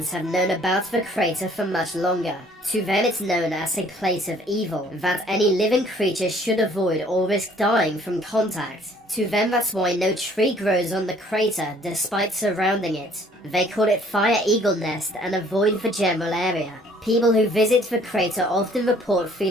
have known about the crater for much longer. To them it's known as a place of evil, that any living creature should avoid or risk dying from contact. To them that's why no tree grows on the crater despite surrounding it. They call it Fire Eagle Nest and avoid the general area. People who visit the crater often report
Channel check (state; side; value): normal; both; correlation 0.58